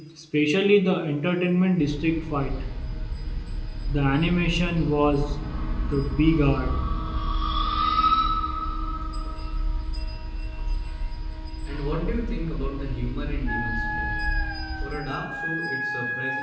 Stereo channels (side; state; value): both; identical; correlation 1.00